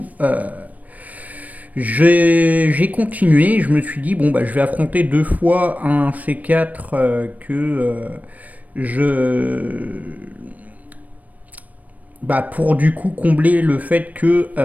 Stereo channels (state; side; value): late; left; 0.074 ms